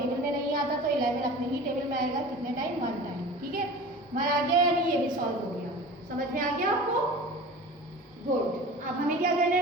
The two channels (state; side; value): normal; both; correlation 0.37